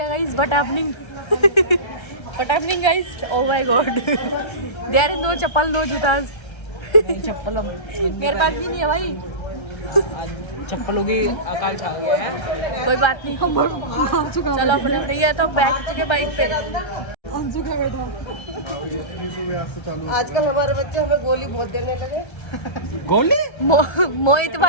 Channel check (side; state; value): right; late; 1.3 ms